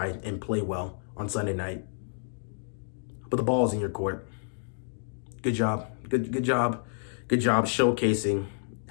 and play well on Sunday night. But the ball's in your court. Good job. Good job. Good job showcasing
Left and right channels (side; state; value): right; silent; digital silence